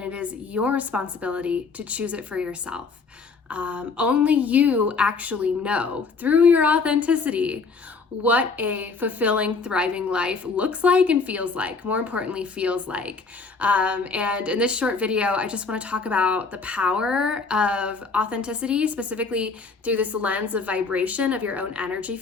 it is your responsibility to choose it for yourself. Only you actually know through your authenticity what a fulfilling, thriving life looks like and feels like, more importantly, feels like. And in this short video, I just want to talk about the power of authenticity, specifically through this lens of vibration of your own energy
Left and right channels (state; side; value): quieter; right; 4.5 dB